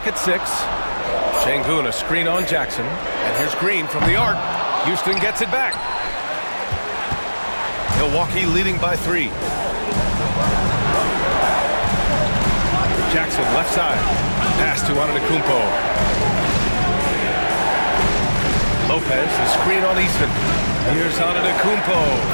at 6. Şengün, a screen on Jackson. And here's Green from the arc. Houston gets it back. Milwaukee leading by 3. Jackson left side. Pass to Antetokounmpo. Lopez, the screen on Easton. Here's Antetokounmpo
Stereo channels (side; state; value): both; inverted; correlation -1.00